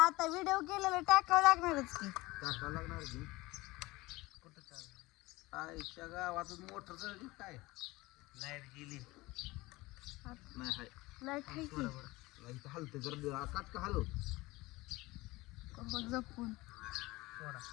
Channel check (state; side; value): quieter; right; 20.8 dB